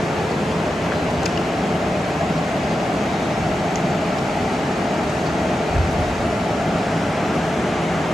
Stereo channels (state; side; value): normal; both; correlation 0.90